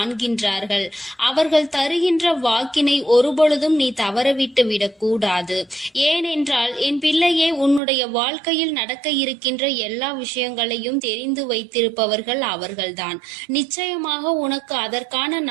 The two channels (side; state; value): left; drops out; at 7.8 s